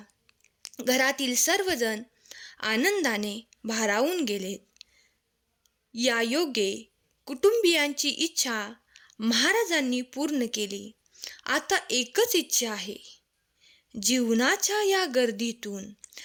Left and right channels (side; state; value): both; identical; correlation 1.00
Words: घरातील सर्वजण आनंदाने भारावून गेलेत. या योगे कुटुंबियांची इच्छा महाराजांनी पूर्ण केली. आता एकच इच्छा आहे. जीवनाच्या या गर्दीतून